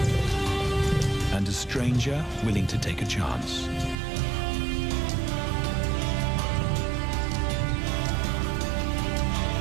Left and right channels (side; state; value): left; drops out; at 4.0 s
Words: and a stranger willing to take a chance.